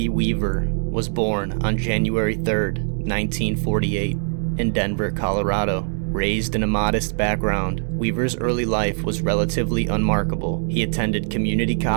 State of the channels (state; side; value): silent; left; digital silence